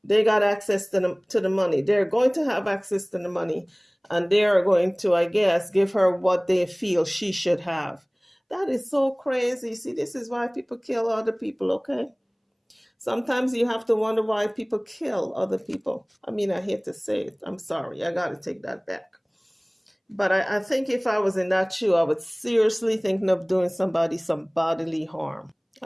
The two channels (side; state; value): both; identical; correlation 1.00